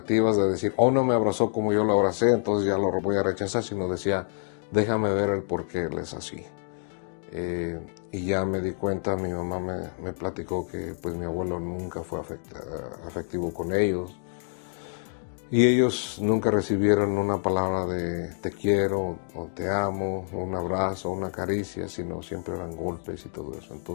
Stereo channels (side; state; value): right; silent; digital silence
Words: de decir, oh, no me abrazó como yo lo abracé, entonces ya lo voy a rechazar, sino decía, déjame ver el por qué él es así. Y ya me di cuenta, mi mamá me platicó que pues mi abuelo nunca fue afectivo con ellos. Y ellos nunca recibieron una palabra de te quiero o te amo, o un abrazo, o una caricia, sino siempre eran golpes y todo eso.